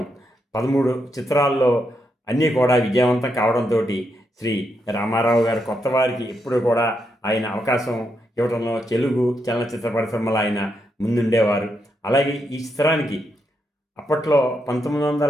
13 చిత్రాల్లో అన్నీ కూడా విజయవంతం కావడంతో శ్రీ రామారావు గారు కొత్త వారికి ఎప్పుడు కూడా ఆయన అవకాశం ఇవ్వడంలో తెలుగు చలనచిత్ర పరిశ్రమలో ఆయన ముందుండేవారు. అలాగే ఈ చిత్రానికి అప్పట్లో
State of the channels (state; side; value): normal; both; correlation 0.81